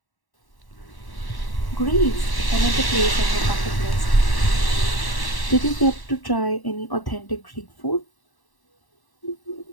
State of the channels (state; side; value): late; right; 1.1 ms